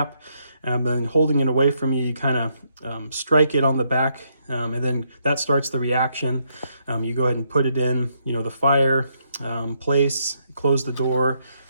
and then holding it away from you, you kind of strike it on the back, and then that starts the reaction. You go ahead and put it in, the fire place, close the door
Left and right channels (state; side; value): inverted; both; correlation -0.76